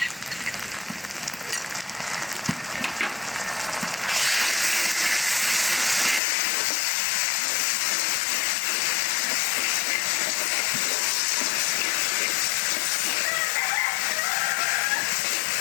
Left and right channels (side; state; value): right; drops out; at 6.2 s